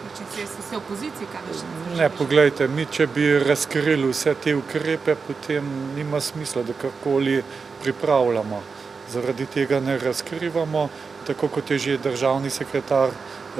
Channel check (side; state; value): left; quieter; 5.0 dB